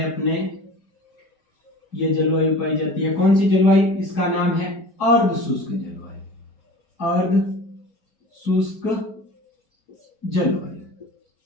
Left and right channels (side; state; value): right; late; 4.8 ms